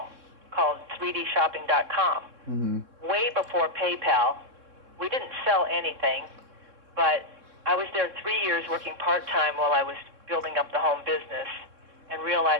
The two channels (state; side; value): late; left; 3.6 ms